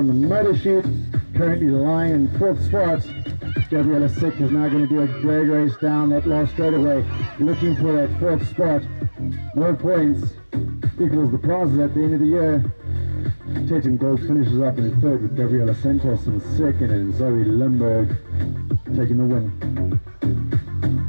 the motor sheet, currently lying in fourth spot. Gabriela Sick is now going to do a drag race down that last straightaway, looking for that fourth spot. More points equals the prizes at the end of the year. Tatum Gold finishes up in third with Gabriela Santos in second, and Zoe Limburg taking the win.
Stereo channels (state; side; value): inverted; both; correlation -1.00